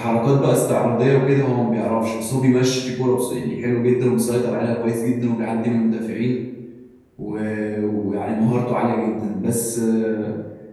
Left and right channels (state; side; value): identical; both; correlation 1.00